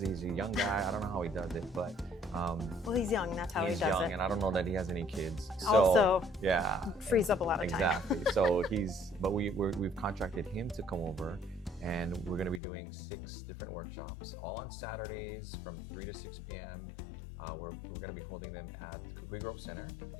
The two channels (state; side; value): drops out; right; at 12.6 s